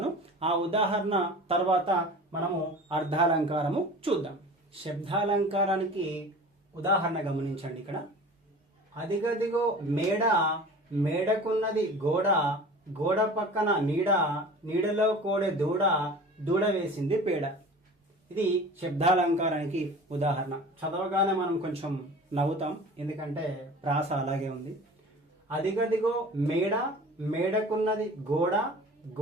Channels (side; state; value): both; normal; correlation 0.40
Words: ఆ ఉదాహరణ తర్వాత మనము అర్థాలంకారము చూద్దాం. శబ్దాలంకారానికి ఉదాహరణ గమనించండి. ఇక్కడ అదిగదిగో మేడ, మేడకున్నది గోడ, గోడ పక్కన నీడ, నీడలో కోడె దూడ, దూడ వేసింది పేడ. ఇది శబ్దాలంకారానికి ఉదాహరణ. చదవగానే మనం కొంచెం నవ్వుతాం, ఎందుకంటే ప్రాస అలాగే ఉంది. అదిగదిగో మేడ, మేడకున్నది గోడ,